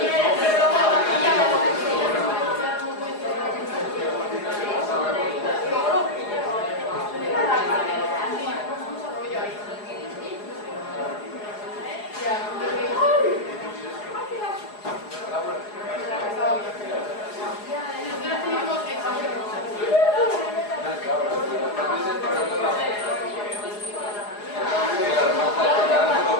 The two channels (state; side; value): late; right; 4.8 ms